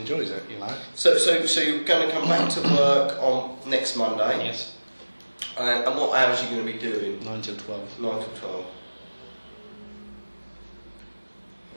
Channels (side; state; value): both; inverted; correlation -1.00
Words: it, So you're going to come back to work on next Monday? Yes. And what hours are you going to be doing? 9 till 12. 9 till 12.